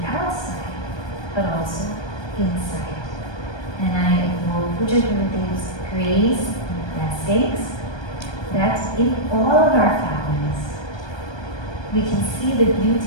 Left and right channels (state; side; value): late; right; 1.2 ms